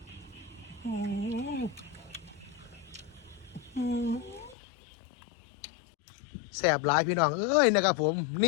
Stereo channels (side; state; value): right; drops out; at 4.5 s